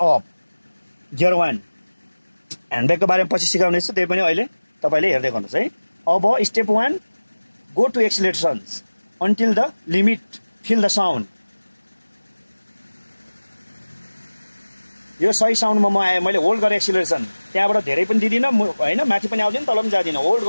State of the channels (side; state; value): both; inverted; correlation -1.00